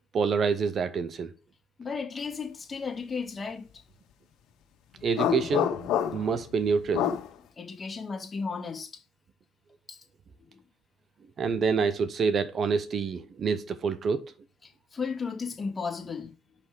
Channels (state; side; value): normal; both; correlation 0.68